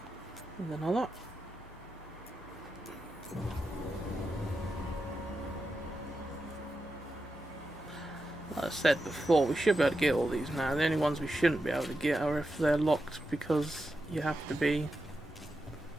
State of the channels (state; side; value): normal; both; correlation 0.89